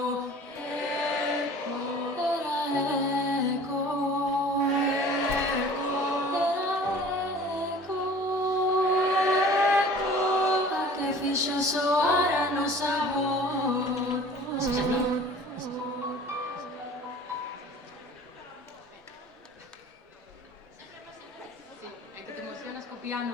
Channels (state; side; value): normal; both; correlation 0.46